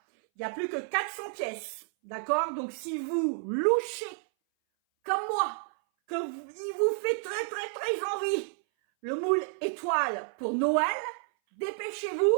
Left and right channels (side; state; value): left; silent; 58 dB below the other